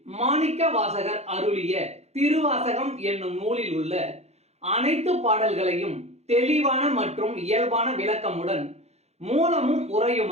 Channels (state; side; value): late; left; 0.31 ms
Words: மாணிக்க வாசகர் அருளிய திருவாசகம் என்னும் நூலில் உள்ள அனைத்து பாடல்களையும் தெளிவான மற்றும் இயல்பான விளக்கமுடன் மூலமும்